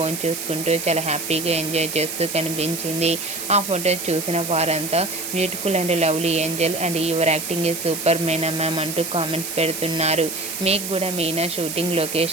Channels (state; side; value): noise; right; hiss, 6 dB below the sound